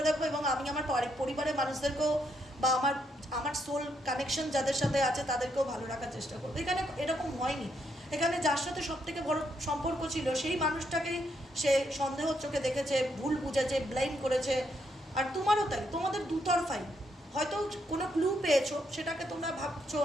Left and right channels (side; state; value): both; normal; correlation 0.76